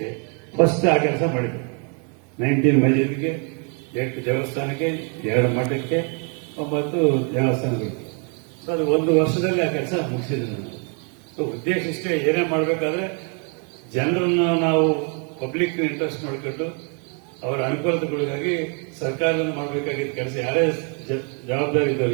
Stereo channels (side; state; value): left; quieter; 38.5 dB